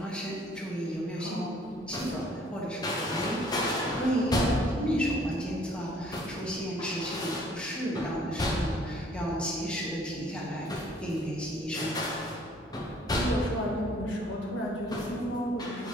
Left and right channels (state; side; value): normal; both; correlation 0.59